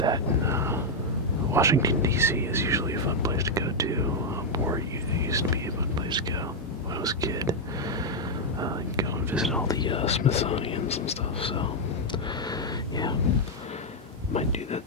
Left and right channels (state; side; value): normal; both; correlation 0.00